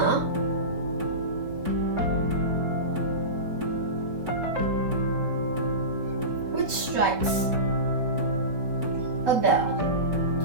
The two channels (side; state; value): left; late; 4.6 ms